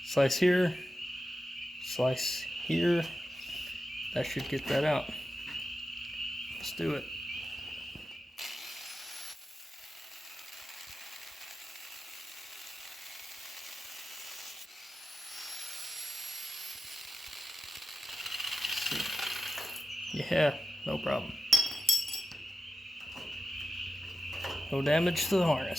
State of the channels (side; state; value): both; normal; correlation 0.92